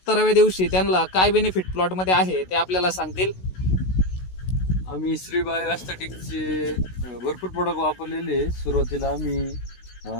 दिवशी त्यांना काय बेनिफिट प्लॉटमध्ये आहे ते आपल्याला सांगतील. आम्ही श्री बायोस्थेटिकचे भरपूर प्रोडक्ट वापरलेले. सुरुवातीला आम्ही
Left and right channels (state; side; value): late; right; 16 ms